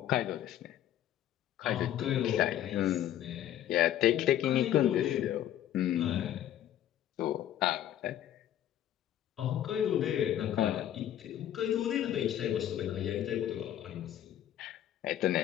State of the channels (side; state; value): right; quieter; 11.6 dB